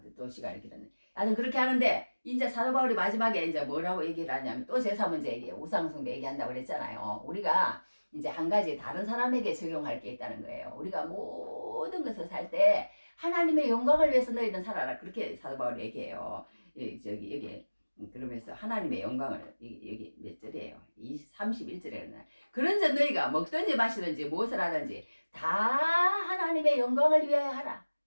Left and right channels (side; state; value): both; inverted; correlation -1.00